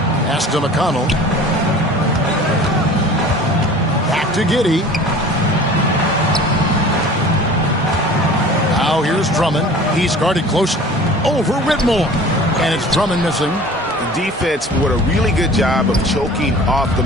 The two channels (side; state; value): both; normal; correlation 0.44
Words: Pass to McConnell. Back to Giddey. Now here's Drummond. He's guarded closely. Over Whitmore. And it's Drummond missing. The defense did a really good job of choking off the